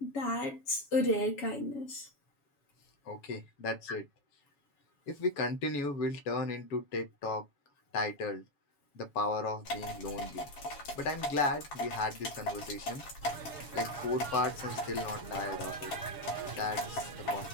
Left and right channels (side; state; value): right; late; 7.1 ms